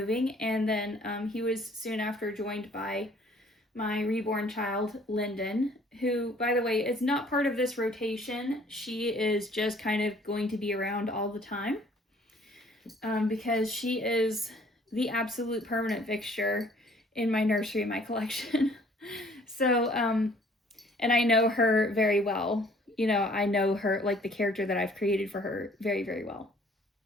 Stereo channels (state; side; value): normal; both; correlation 0.57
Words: and then he was soon after joined by my reborn child, Lyndon, who, by the way, is not part of this rotation. She is just kind of going to be around all the time because she is the absolute permanent fixture in my nursery and my collection. So, and I know her very well. You know, I know her, like the character that I've created for her, very, very well.